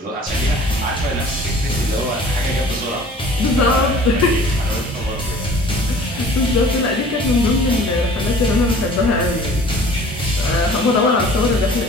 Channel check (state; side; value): normal; both; correlation 0.48